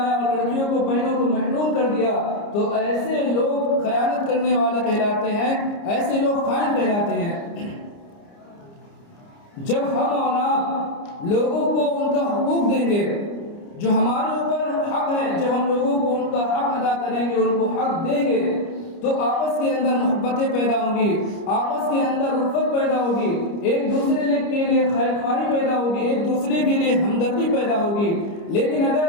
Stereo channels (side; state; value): right; late; 29 ms